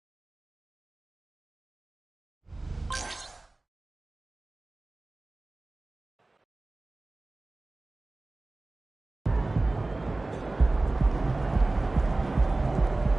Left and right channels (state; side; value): quieter; left; 3.0 dB